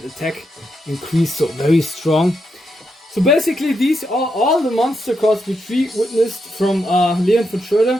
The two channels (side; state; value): both; normal; correlation 0.82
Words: attack increase, so very strong. So basically these are all the monster cards which we witnessed from Leon von